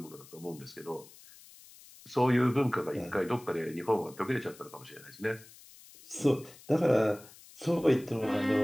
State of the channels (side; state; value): left; noise; hiss, 21 dB below the sound